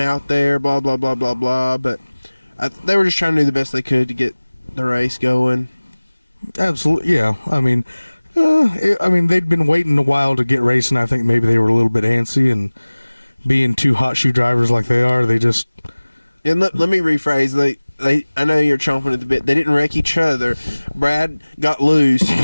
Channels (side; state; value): both; inverted; correlation -1.00